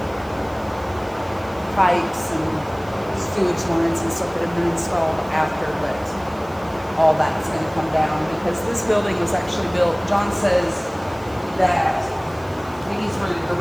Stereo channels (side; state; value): right; noise; hiss, 25 dB below the sound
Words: pipes and sewage lines and stuff that have been installed after, but all that's going to come down because this building was actually built. John says that these were